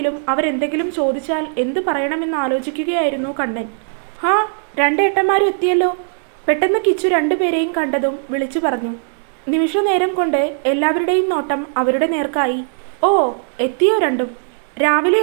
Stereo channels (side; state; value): left; silent; digital silence